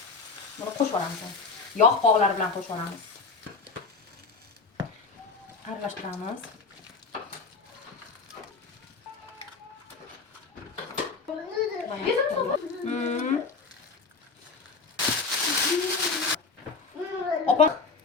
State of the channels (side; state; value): right; quieter; 4.4 dB